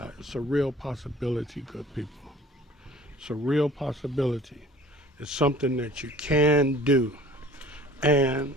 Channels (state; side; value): normal; both; correlation 0.48